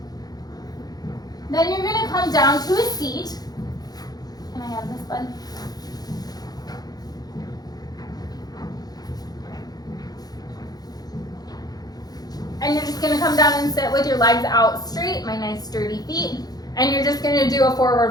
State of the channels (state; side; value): late; right; 0.19 ms